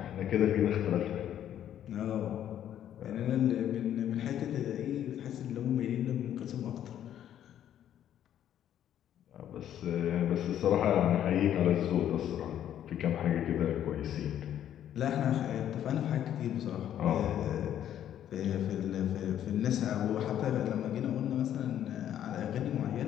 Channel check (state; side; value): quieter; right; 10.7 dB